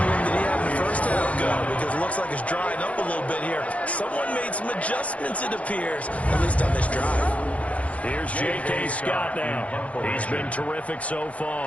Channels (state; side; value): late; right; 0.065 ms